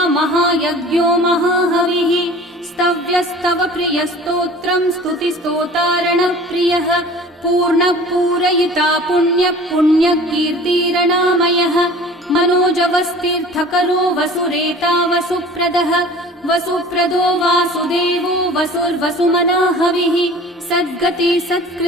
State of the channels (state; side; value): normal; both; correlation 0.44